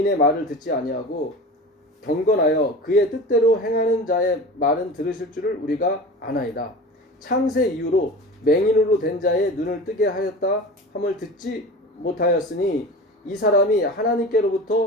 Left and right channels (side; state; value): both; normal; correlation 0.33